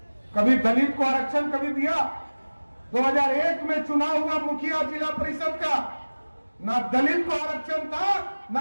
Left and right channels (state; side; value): inverted; both; correlation -1.00